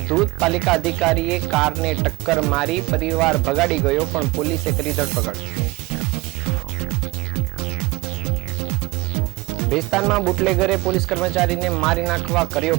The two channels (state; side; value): quieter; left; 22.8 dB